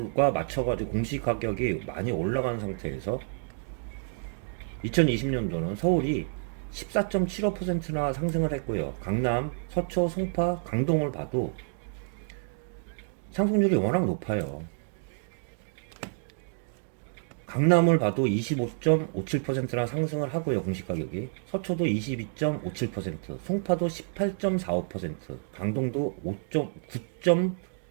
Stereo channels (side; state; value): left; silent; digital silence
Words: 맞춰가지고 공시 가격이 많이 올라간 상태에서 2020년도는 서울이 14.75%나 상승을 했고요. 강남, 서초, 송파, 강동을 봐도 상승률이 워낙 높아요. 강남을 봐도 25.57%나 상승을 하고요. 공시가격이. 서초도 22.57%, 송파도 18.45%, 강동도